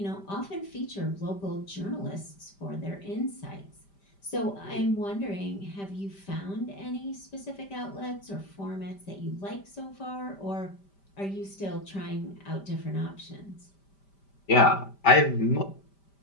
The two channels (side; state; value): right; late; 5.1 ms